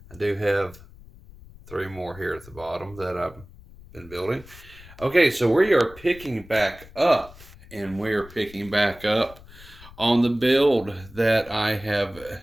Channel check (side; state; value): left; noise; rumble, 20 dB below the sound